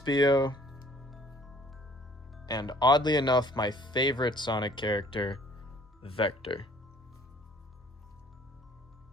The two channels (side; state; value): both; normal; correlation 0.56